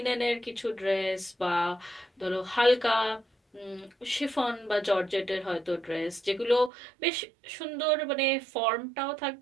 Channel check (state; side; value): drops out; left; at 6.7 s